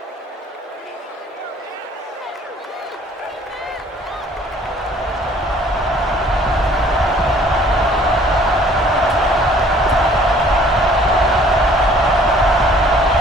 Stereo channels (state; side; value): normal; both; correlation 0.56